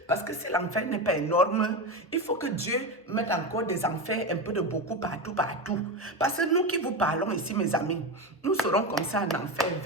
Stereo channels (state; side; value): normal; both; correlation 0.18